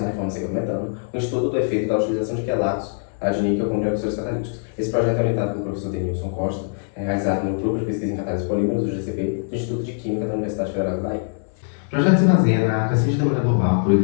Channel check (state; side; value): silent; right; 64 dB below the other